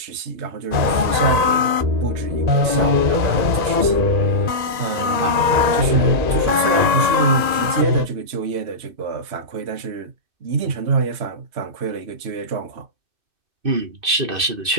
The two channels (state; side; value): late; left; 2.6 ms